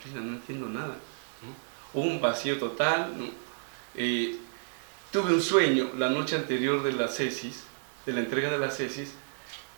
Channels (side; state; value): left; silent; digital silence